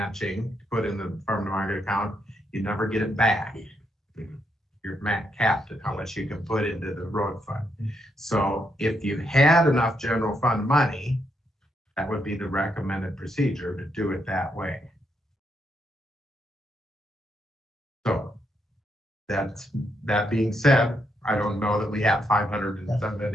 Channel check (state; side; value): normal; both; correlation 0.78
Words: to put in the farm to market account, you never get it back. You're capped at how much you can put into the road fund. So if you had enough general fund money, that would be the recommended procedure to do it that way. So that being said, I don't know that we have